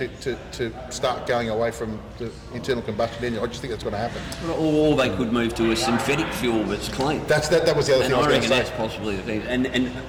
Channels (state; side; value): identical; both; correlation 1.00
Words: start going away from the internal combustion engine. I just think that's going to happen. Or they could move to a synthetic fuel that's clean. That was the other And thing I was I going reckon to that's say. possibly the thing. And